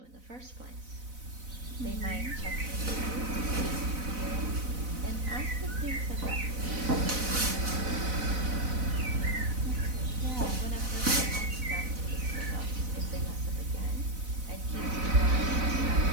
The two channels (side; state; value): left; late; 4.0 ms